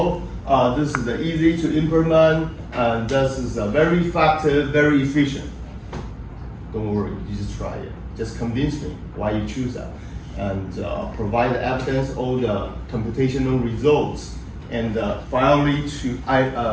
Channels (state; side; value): identical; both; correlation 1.00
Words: This is easy to implement, and this is very effective, very efficient. Don't worry, you just try it. Just convince me why you choose that, and provide the evidence, all the computational results, and finally to